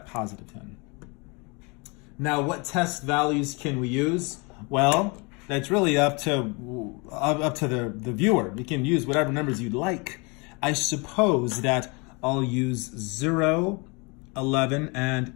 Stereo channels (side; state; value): right; quieter; 29.6 dB